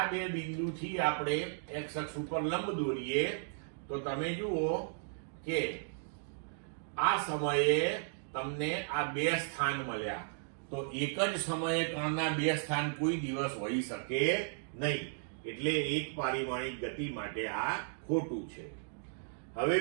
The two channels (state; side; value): silent; left; digital silence